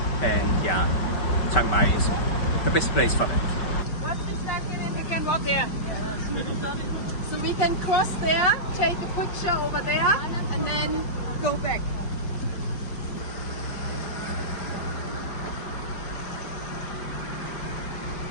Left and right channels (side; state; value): right; late; 5.2 ms